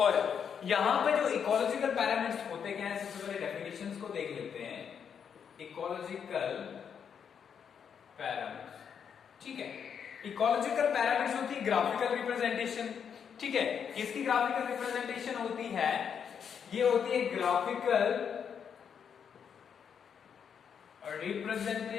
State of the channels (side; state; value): right; quieter; 7.4 dB